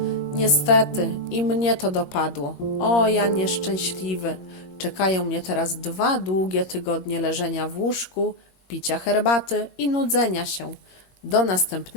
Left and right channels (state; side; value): late; right; 21 ms